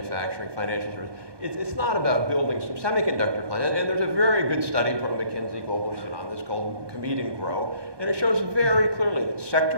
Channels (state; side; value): late; left; 1.2 ms